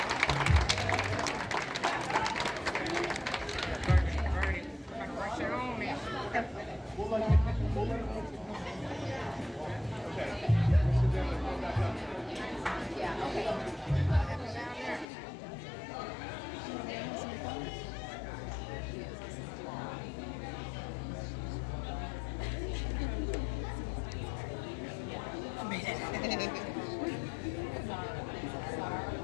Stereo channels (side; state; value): right; drops out; at 15.1 s